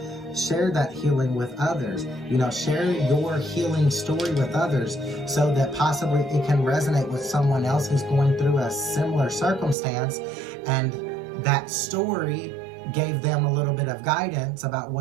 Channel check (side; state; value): left; drops out; at 9.8 s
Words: share that healing with others. You know, share your healing story with others so that possibly it can resonate with someone else who's going through a similar circumstance, and that story gave them a little bit of guidance about